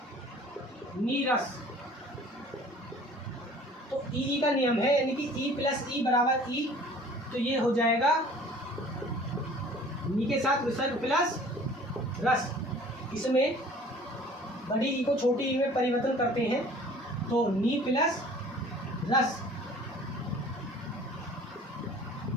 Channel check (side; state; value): both; normal; correlation 0.49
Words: नीरस, तो ई का नियम है, यानी कि ई प्लस ई बराबर ई, तो ये हो जाएगा नी के साथ विसर्ग प्लस रस। इसमें बड़ी ई को छोटी ई में परिवर्तन करते हैं, तो नी प्लस रस,